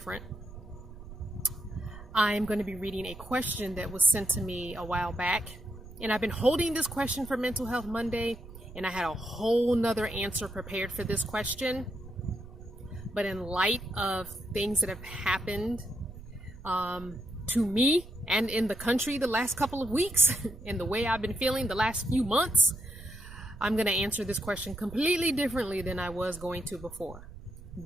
I'm going to be reading a question that was sent to me a while back, and I've been holding this question for Mental Health Monday, and I had a whole nother answer prepared for this question. But in light of things that have happened to me and in the country the last couple of weeks and the way I've been feeling the last few months, I'm going to answer this question completely differently than I was going to before.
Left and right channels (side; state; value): right; noise; rumble, 16 dB below the sound